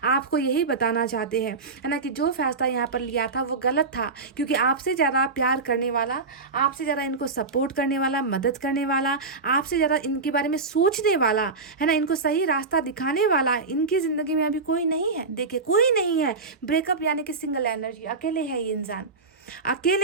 आपको यही बताना चाहते हैं, है ना, कि जो फैसला यहाँ पर लिया था वो गलत था, क्योंकि आपसे ज़्यादा प्यार करने वाला, आपसे ज़्यादा इनको सपोर्ट करने वाला, मदद करने वाला, आपसे ज़्यादा इनके बारे में सोचने वाला, है ना, इनको सही रास्ता दिखाने वाला इनकी ज़िंदगी में अभी कोई नहीं है। देखिए कोई नहीं है। ब्रेकअप यानी कि सिंगल एनर्जी, अकेले है ये इंसान,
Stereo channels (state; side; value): quieter; left; 4.1 dB